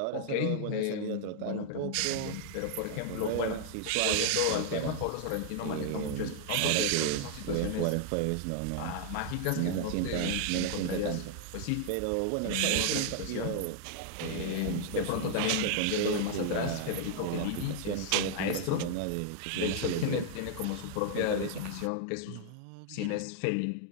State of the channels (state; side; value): different; both; correlation 0.00